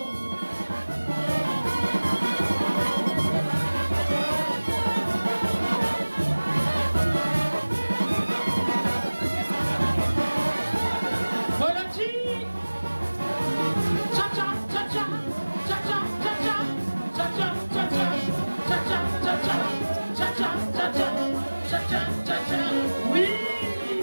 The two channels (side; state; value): both; inverted; correlation -1.00